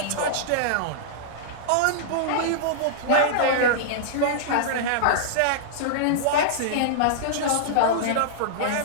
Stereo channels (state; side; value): different; both; correlation -0.02